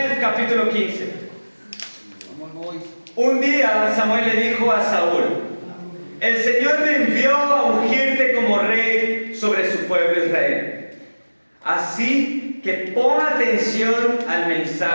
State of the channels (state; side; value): inverted; both; correlation -1.00